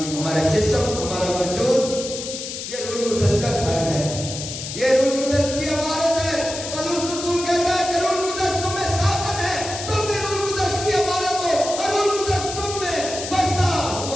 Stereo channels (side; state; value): left; noise; hiss, 7 dB below the sound